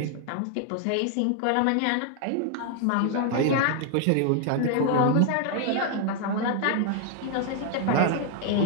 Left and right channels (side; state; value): both; different; correlation 0.00